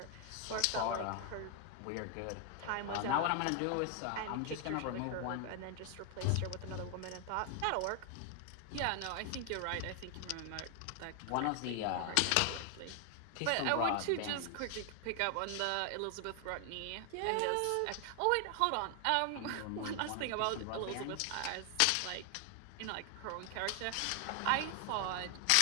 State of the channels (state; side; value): different; both; correlation 0.00